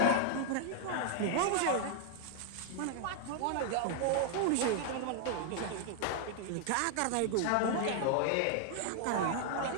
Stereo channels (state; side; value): different; both; correlation 0.00